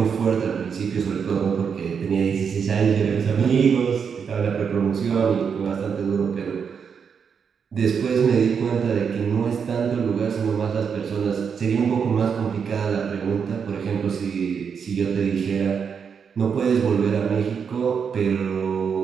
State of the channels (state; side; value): quieter; left; 6.6 dB